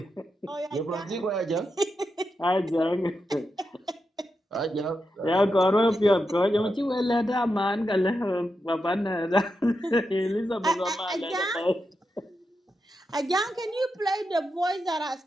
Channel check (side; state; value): both; normal; correlation 0.87